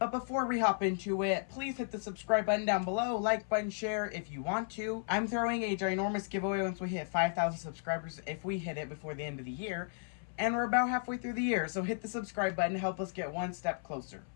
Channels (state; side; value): silent; right; 55 dB below the other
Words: before we hop into it, please hit the subscribe button down below, like button, share if you want to. I'm throwing a ginormous giveaway once we hit 5,000 subscribers if we hit it before the end of the year. And we're about halfway through the year, so hit the subscribe button to help us get one step closer.